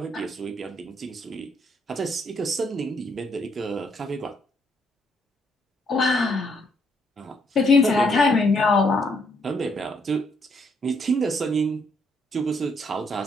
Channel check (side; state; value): both; normal; correlation 0.72